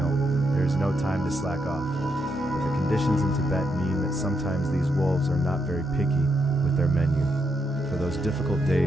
there is no time to slack off. But the conditions in Tibet mean that sometimes these wolves are not very picky with their menu. For those difficult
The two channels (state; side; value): normal; both; correlation 0.80